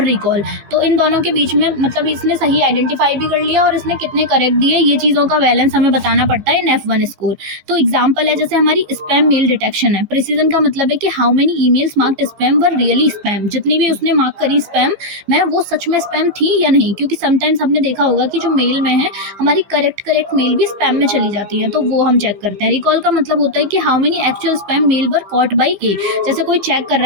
रिकॉल। तो इन दोनों के बीच में मतलब इसने सही आइडेंटिफाई भी कर लिया और इसने कितने करेक्ट दिए, ये चीज़ों का बैलेंस हमें बताना पड़ता है इन F1 स्कोर। तो एग्जाम्पल है जैसे हमारी स्पैम मेल डिटेक्शन है। प्रिसीजन का मतलब है कि how many emails marked spam were really spam. जितनी भी उसने मार्क करी स्पैम में, वो सच में स्पैम थी या नहीं। क्योंकि समटाइम्स हमने देखा होगा कि जो मेल में है हमारी करेक्ट मेल भी स्पैम में चली जाती है, तो वो हम चेक करते हैं। रिकॉल का मतलब होता है कि how many actual spam mail were caught by A. जैसे कोई चेक कर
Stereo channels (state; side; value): late; left; 15 ms